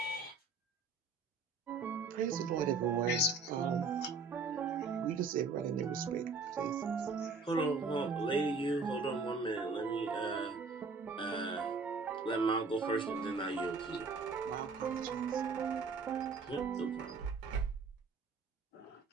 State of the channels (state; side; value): quieter; left; 4.4 dB